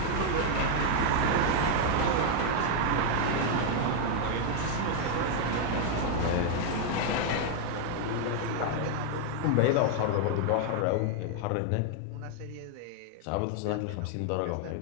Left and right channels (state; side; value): different; both; correlation 0.00